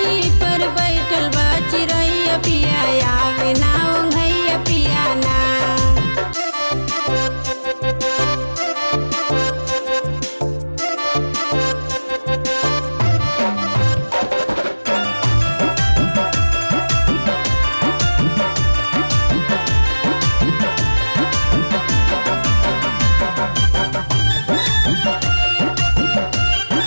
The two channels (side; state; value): both; inverted; correlation -1.00